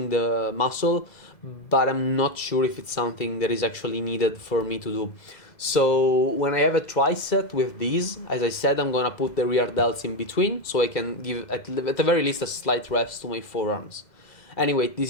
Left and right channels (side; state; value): right; late; 2.0 ms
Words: the muscle, but I'm not sure if it's something that is actually needed for me to do. So when I have a tricep with these, as I said, I'm gonna put the rear delts in between so I can give at the very least a slight rest to my forearms. Anyway,